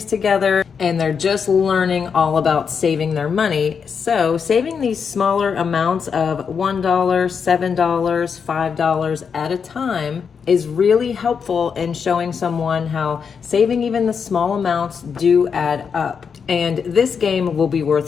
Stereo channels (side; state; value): right; quieter; 6.3 dB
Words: together and they're just learning all about saving their money. So saving these smaller amounts of $1, $7, $5 at a time is really helpful in showing someone how saving even the small amounts do add up. And this game will be